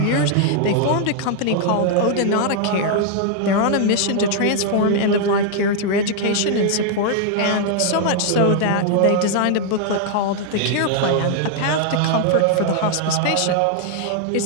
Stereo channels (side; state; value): both; different; correlation 0.00